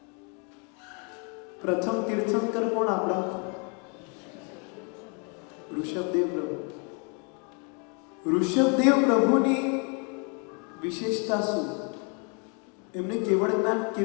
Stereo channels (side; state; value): right; quieter; 36.6 dB